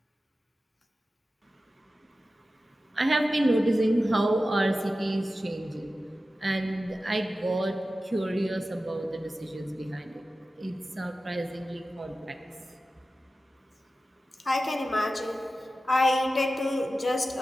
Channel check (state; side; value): normal; both; correlation 0.94